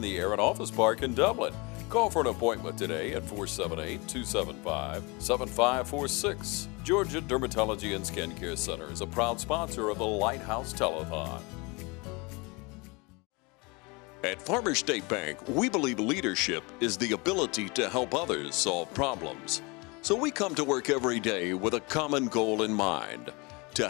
the Aaron Office Park in Dublin. Call for an appointment today at 478-275-7546. Georgia Dermatology and Skincare Center is a proud sponsor of the Lighthouse Telethon. At Farmers State Bank, we believe leadership is the ability to help others solve problems. So we come to work every day with a common goal in mind,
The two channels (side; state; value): right; quieter; 27.6 dB